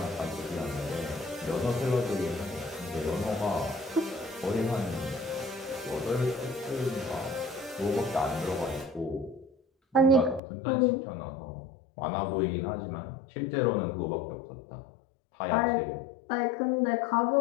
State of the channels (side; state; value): right; drops out; at 10.4 s